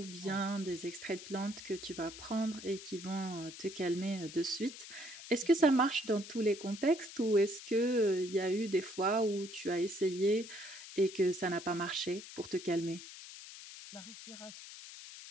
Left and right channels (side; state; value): left; noise; hiss, 13 dB below the sound